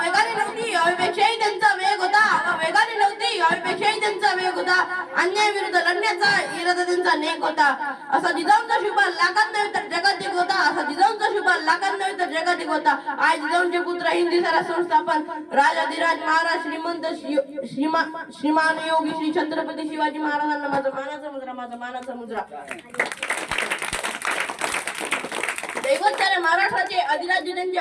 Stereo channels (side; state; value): both; identical; correlation 1.00